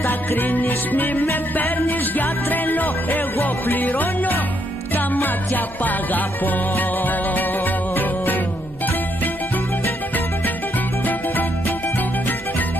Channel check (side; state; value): both; normal; correlation 0.75